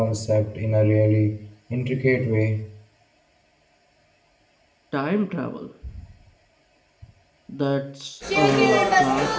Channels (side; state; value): both; identical; correlation 1.00